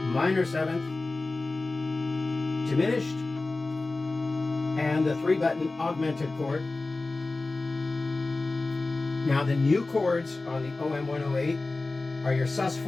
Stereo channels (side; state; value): right; quieter; 3.3 dB